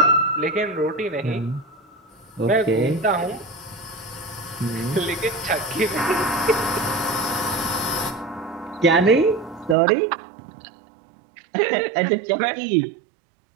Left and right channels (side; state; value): left; drops out; at 9.8 s